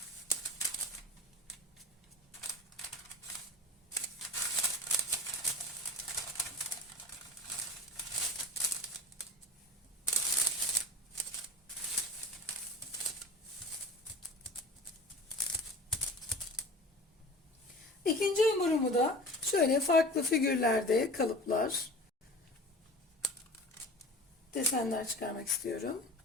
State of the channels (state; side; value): normal; both; correlation 0.37